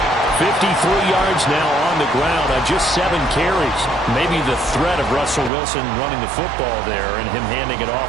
53 yards now on the ground on just 7 carries. Maybe the threat of Russell Wilson running the football there and him handing it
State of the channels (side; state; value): left; drops out; at 5.5 s